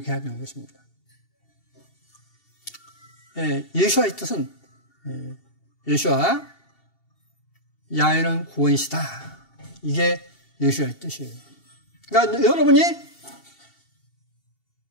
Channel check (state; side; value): late; right; 2.7 ms